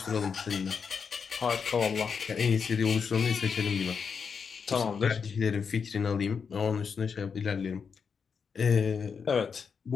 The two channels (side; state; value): right; quieter; 6.1 dB